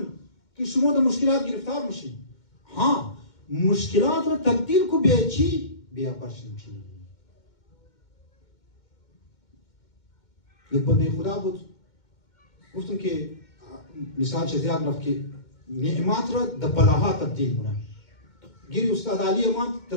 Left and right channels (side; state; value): right; late; 2.2 ms